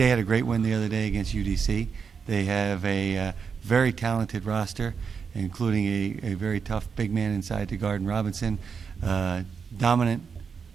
had a great win the other day against UDC. They have a very talented roster, including a very tough big man inside to guard Robinson, dominant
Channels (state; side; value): quieter; left; 6.0 dB